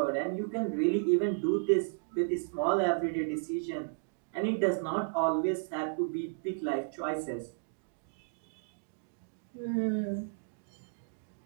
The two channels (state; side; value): silent; left; digital silence